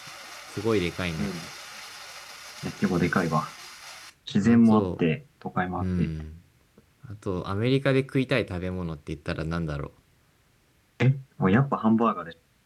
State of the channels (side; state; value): both; identical; correlation 1.00